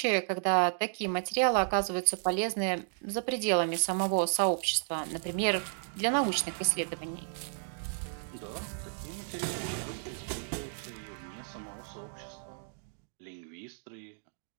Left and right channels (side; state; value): left; silent; digital silence